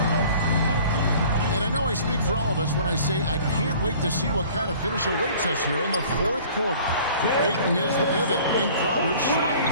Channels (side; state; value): both; inverted; correlation -0.49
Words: And I know I speak for all of us when I say I can't wait to see what kind of finish awaits us here in the fourth quarter. Ayton is the pivot, and Crowder